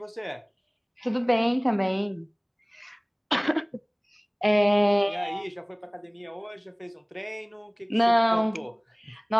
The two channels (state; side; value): identical; both; correlation 1.00